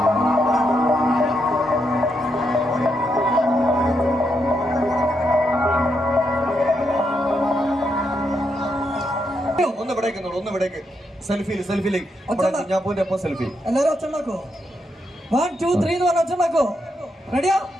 ഒന്ന് വിടേക്ക് സെൽഫിയിലേക്ക് കുഞ്ഞാപ്പൂന്റെ ഒപ്പം സെൽഫി. എല്ലാരും ഒച്ചുണ്ടാക്കോ? 1 2 3 എന്ന് പറഞ്ഞ ഒച്ചുണ്ടാക്കോ? റെഡിയോ?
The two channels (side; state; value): both; normal; correlation 0.81